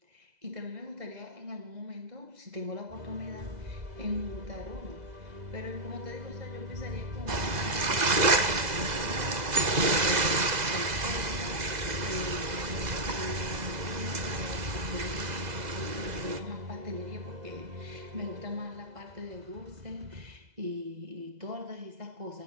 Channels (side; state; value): left; late; 2.0 ms